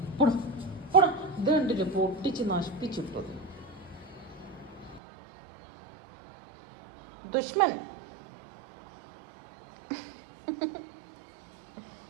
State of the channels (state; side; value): drops out; left; at 5.0 s